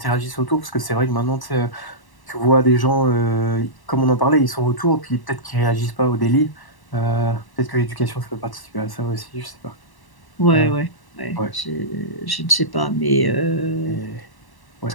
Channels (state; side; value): late; right; 1.1 ms